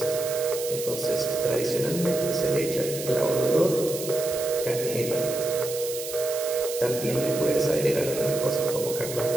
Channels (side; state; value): right; noise; hiss, 9 dB below the sound